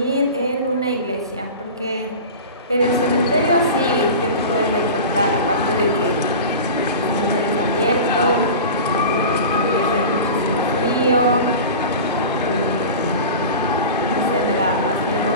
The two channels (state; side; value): inverted; both; correlation -0.33